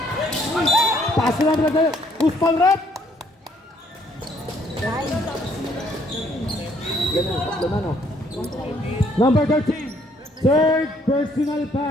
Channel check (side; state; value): both; normal; correlation 0.65